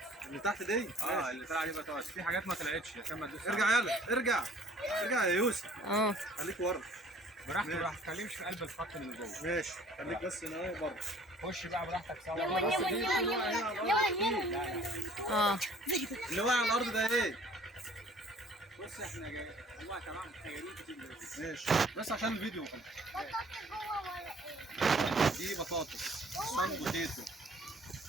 اللي تحت دي. اللي طلع دي بطاطس، في حاجات ما طلعتش عشان ما تدوسش. ارجع يلا ارجع يا يوسف. اه. خليك ورا. براحتك ما تتكلمش في قلب الخط اللي جوه. ماشي خليك بس هنا اهو بره. خش بقى براحتك سوا. lemon. اه. اللي واقع على الارض ده ايه؟ بص احنا جايين والله تمام جايين كتير دلوقتي. ماشي بس عشان الفيديو خلاص. دي بطاطس صن بوتيتو.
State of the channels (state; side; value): normal; both; correlation 0.54